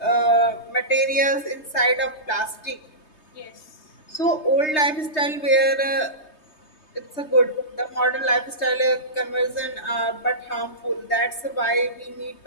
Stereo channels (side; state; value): right; late; 3.2 ms